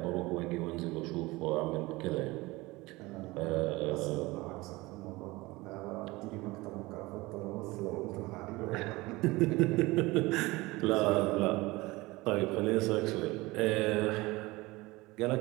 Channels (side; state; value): left; quieter; 21.4 dB